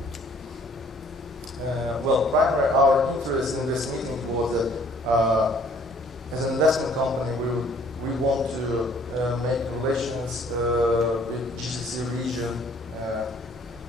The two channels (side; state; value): both; normal; correlation 0.58